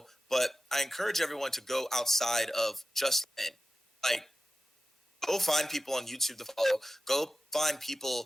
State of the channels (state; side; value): normal; both; correlation 0.94